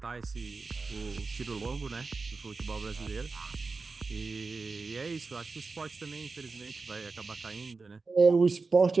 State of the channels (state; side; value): quieter; left; 4.2 dB